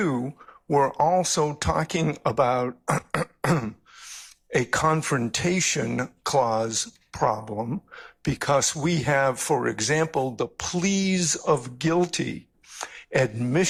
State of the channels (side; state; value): both; identical; correlation 1.00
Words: we're also talking about a confrontation clause problem, because we have, for example, the pleas of guilty,